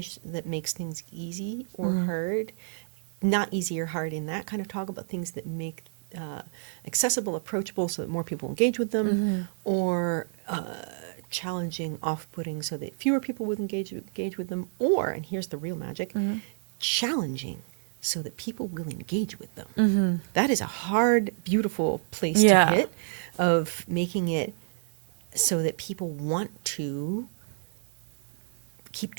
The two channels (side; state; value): left; silent; digital silence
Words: that makes things easy or hard? Not easy or hard in that kind of talk, about things that make accessible, approachable, so that more people engage with them, or challenging, off-putting, so that fewer people would engage with them, or, and here's the real magic, challenging, so that people will engage with them. That is a hard, beautiful place to hit, of making it so that people want to keep